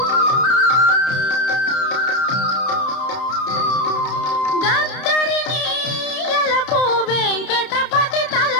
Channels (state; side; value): late; right; 31 ms